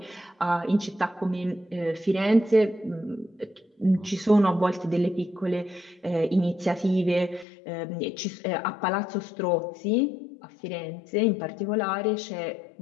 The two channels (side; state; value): right; drops out; at 7.5 s